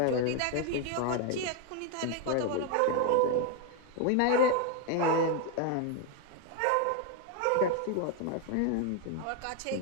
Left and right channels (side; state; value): both; different; correlation 0.01